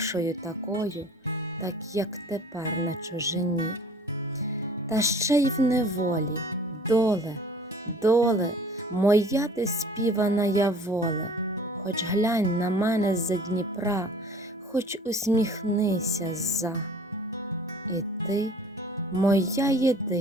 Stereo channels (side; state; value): both; normal; correlation 0.49